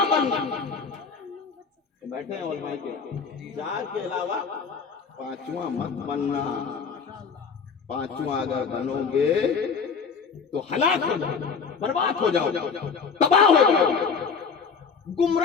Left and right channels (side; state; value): right; quieter; 5.7 dB